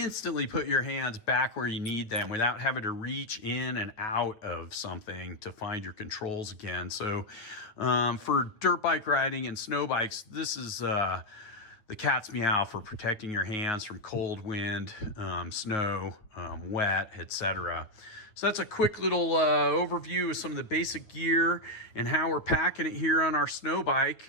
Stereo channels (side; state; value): right; late; 9.0 ms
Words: put your hands back where you need them without having to reach in and out of something to find your controls again. So for dirt bike riding and snow bikes, this is the cat's meow for protecting your hands from cold wind, snow, wet, etc. So that's a quick little overview of some of the basic gear and how we're packing it here on our snow